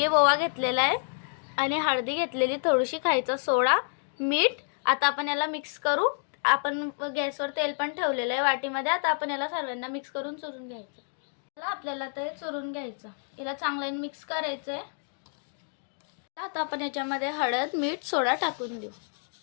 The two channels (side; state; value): right; silent; digital silence